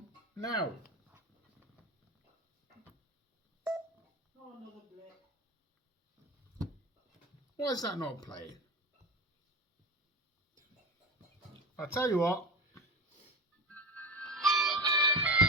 now. Oh, another blip. Why is that not playing? I'll tell you what.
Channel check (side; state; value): both; normal; correlation 0.26